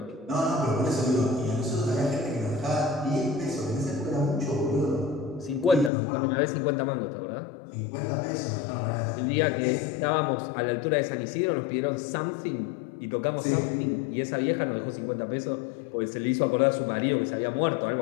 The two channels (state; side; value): drops out; right; at 5.9 s